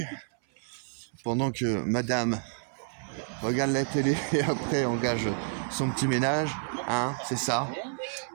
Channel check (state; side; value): silent; left; 58 dB below the other